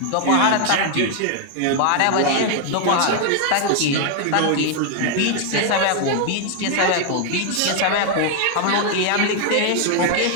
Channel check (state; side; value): different; both; correlation 0.00